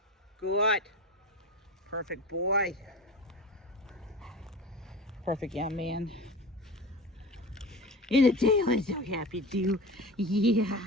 Good. Perfect boy. Perfect young man. In the tail is so happy too. Yeah,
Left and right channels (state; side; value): normal; both; correlation 0.31